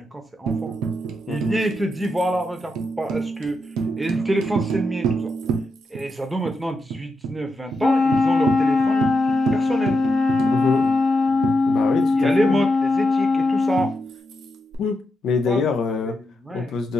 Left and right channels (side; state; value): both; normal; correlation 0.85